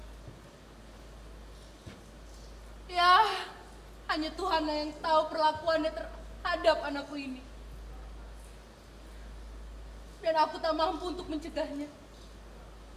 Ya, hanya Tuhan yang tahu perlakuannya terhadap anakku ini. Dan aku tak mampu untuk mencegahnya.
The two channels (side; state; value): both; identical; correlation 1.00